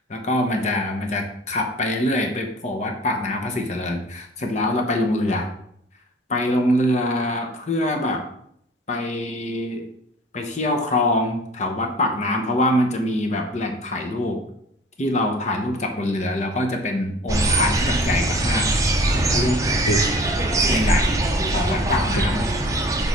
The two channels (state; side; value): normal; both; correlation 0.46